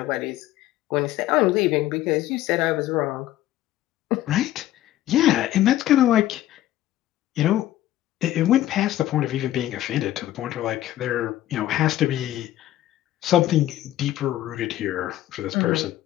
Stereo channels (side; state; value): right; quieter; 13.9 dB